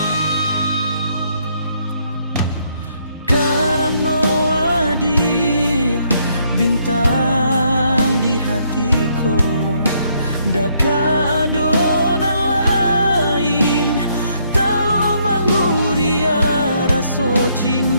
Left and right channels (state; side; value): inverted; both; correlation -0.71